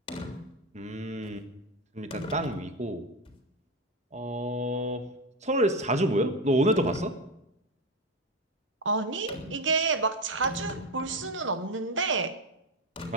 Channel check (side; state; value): both; normal; correlation 0.14